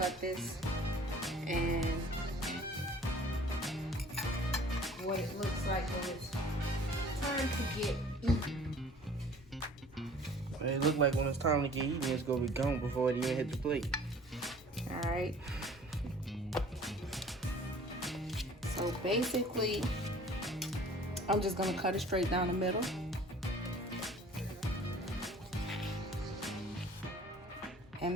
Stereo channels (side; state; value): both; normal; correlation 0.49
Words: this and what it looks like when it's time to get eaten. It look like when it's time to get eaten, it's gonna be gone before it even hit the plate. Alright. So basically, I'm just gonna cut it straight down the middle.